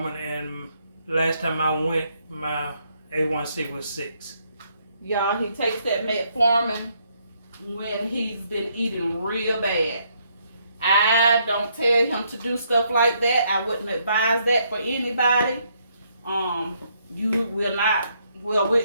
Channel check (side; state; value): both; inverted; correlation -0.72